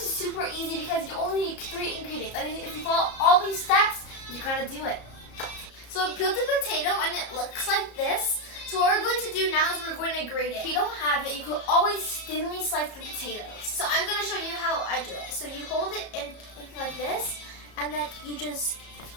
super easy because you only need 3 ingredients. I mean, if you follow all these steps, you're gonna do it. So I peeled the potato and it looks like this. So what we're going to do now is we're going to grate it. If you don't have it, you could always thinly slice the potatoes. So I'm going to show you how I do it. So you hold it in like this, and then you just...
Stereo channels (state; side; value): late; right; 34 ms